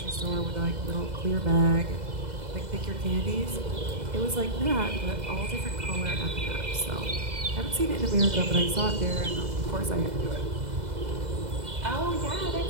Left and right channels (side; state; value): left; late; 2.0 ms